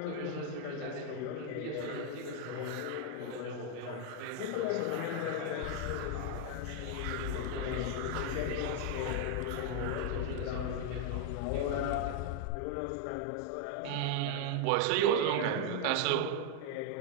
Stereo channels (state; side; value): different; both; correlation 0.00